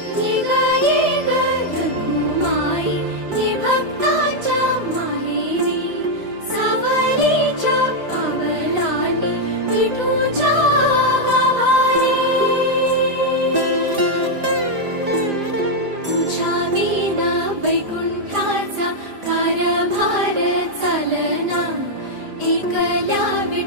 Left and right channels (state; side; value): late; left; 5.0 ms